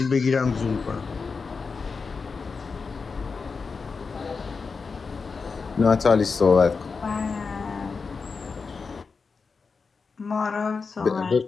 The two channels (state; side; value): quieter; right; 4.9 dB